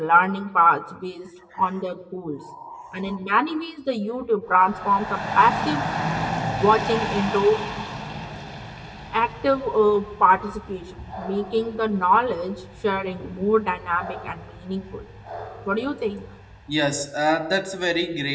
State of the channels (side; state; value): both; identical; correlation 1.00